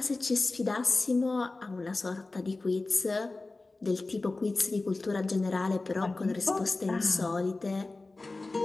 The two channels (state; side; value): quieter; right; 3.3 dB